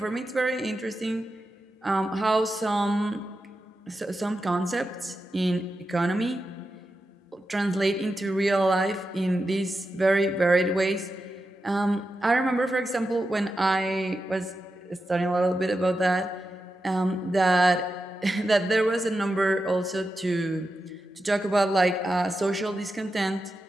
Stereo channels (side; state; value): both; normal; correlation 0.89